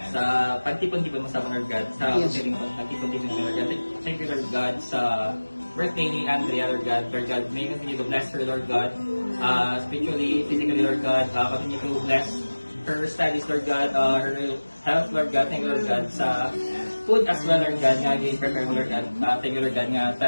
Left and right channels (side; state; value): both; inverted; correlation -1.00